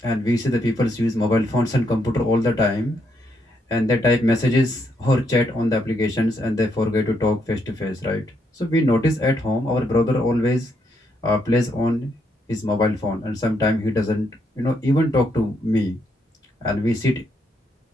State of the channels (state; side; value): normal; both; correlation 0.76